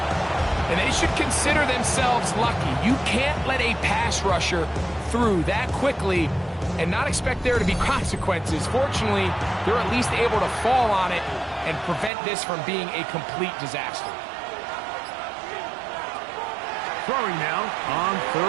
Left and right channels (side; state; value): left; drops out; at 12.1 s